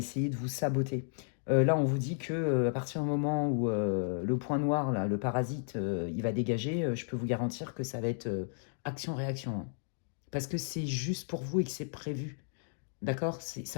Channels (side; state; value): right; silent; digital silence